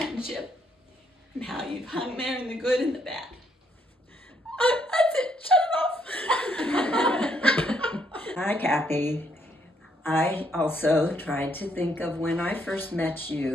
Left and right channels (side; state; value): both; normal; correlation 0.72